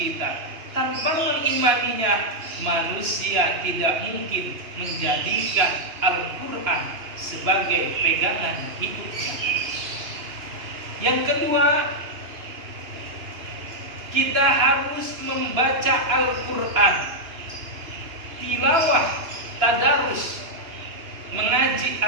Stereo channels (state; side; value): late; left; 2.9 ms